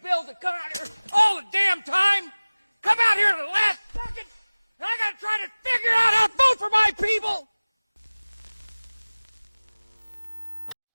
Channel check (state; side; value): inverted; both; correlation -1.00